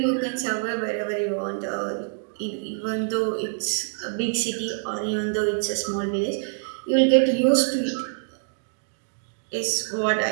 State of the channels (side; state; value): left; silent; 61 dB below the other